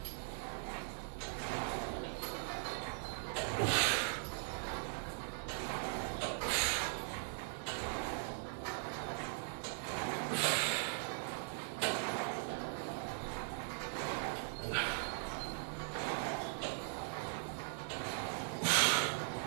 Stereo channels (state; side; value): silent; left; 51 dB below the other